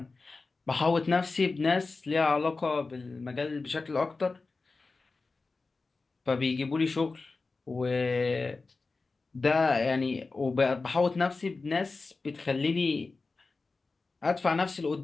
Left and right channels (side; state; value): right; quieter; 3.9 dB